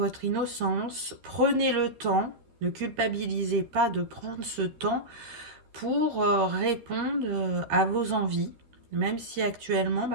innocence, prenez le temps, ne culpabilisez pas de prendre ce temps pour répondre à vos envies, même si actuellement,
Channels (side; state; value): left; late; 13 ms